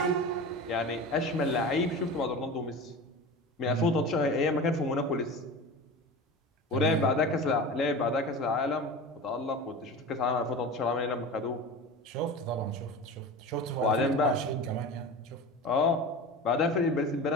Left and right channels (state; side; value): normal; both; correlation 0.31